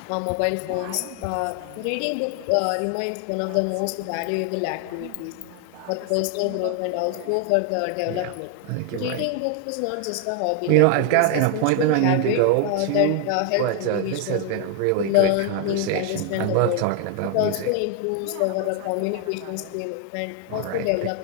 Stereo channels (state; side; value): different; both; correlation 0.01